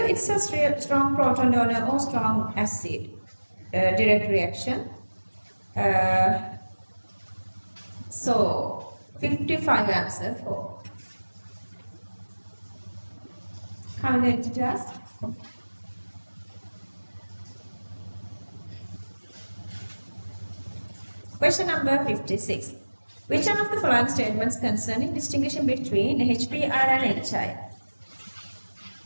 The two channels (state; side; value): inverted; both; correlation -1.00